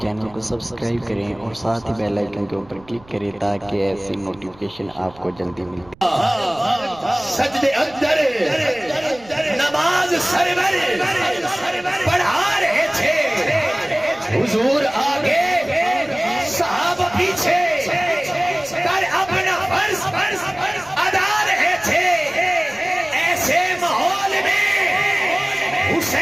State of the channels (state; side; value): noise; right; rumble, 25 dB below the sound